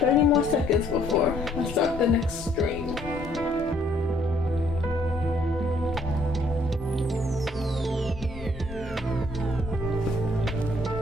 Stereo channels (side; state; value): both; normal; correlation 0.65